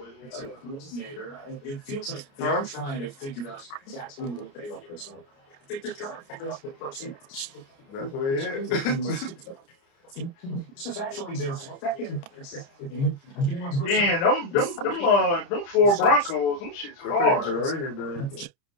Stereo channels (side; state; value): right; late; 29 ms